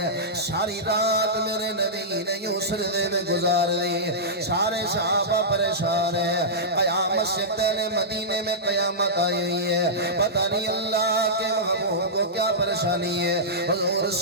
ساری رات میرے نبی نے یوں سردے میں گزار دی. سارے صحابہ پریشان ہیں. قیامت سے پہلے مدینے میں قیامت آئی ہے, پتہ نہیں اللہ کے محبوب کو کیا پریشانی ہے. حضور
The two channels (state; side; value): normal; both; correlation -0.15